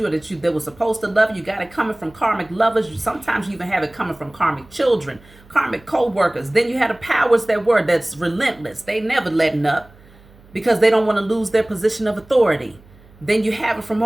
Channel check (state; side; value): noise; right; hum, 26 dB below the sound